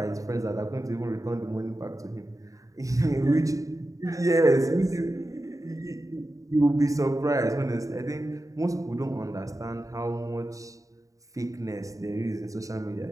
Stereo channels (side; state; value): left; late; 0.16 ms